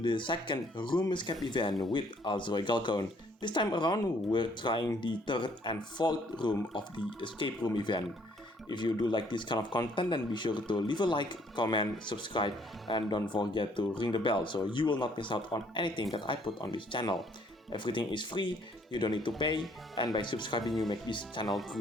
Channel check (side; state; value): both; normal; correlation 0.64